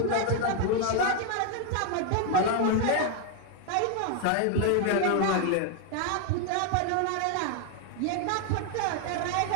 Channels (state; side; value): different; both; correlation 0.00